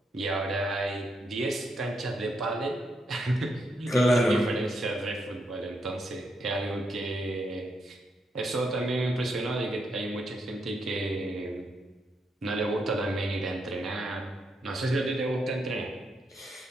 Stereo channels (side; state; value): both; normal; correlation 0.80